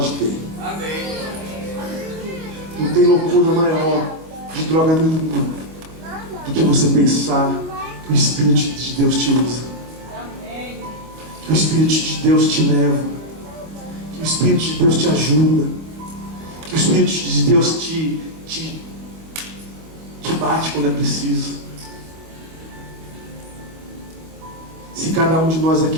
ter. Amém. Não tem loucura maior de droga nenhuma do que você pensar que o Espírito de Deus te usa, que o Espírito de Deus te leva, que o Espírito de Deus te ajuda, que o Espírito de Deus te bate quando é preciso. Se cada um de nós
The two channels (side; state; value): left; late; 25 ms